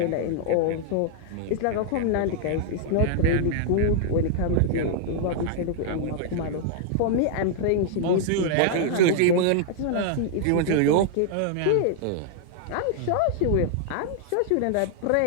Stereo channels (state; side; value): different; both; correlation -0.01